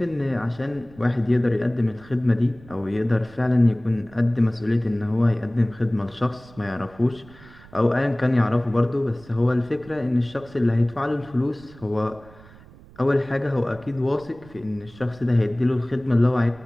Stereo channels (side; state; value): right; noise; rumble, 22 dB below the sound